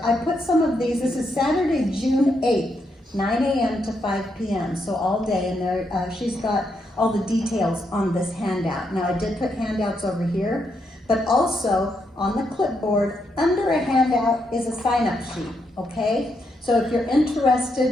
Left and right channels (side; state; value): both; normal; correlation 0.79